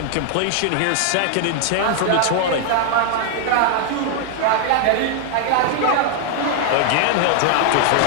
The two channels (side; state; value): both; different; correlation 0.00